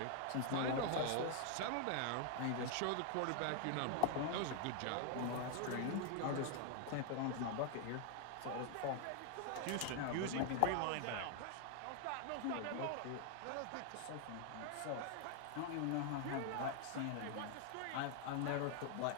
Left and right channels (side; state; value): both; different; correlation 0.00